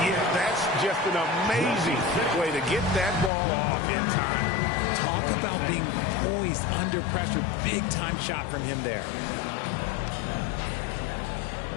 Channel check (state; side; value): drops out; right; at 3.3 s